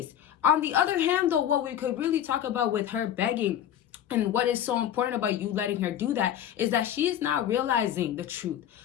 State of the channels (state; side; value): quieter; right; 10.5 dB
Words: On the other hand, though, what we could really talk about with her begging, and what is so important about you letting her do that, is that she is not realizing the truth.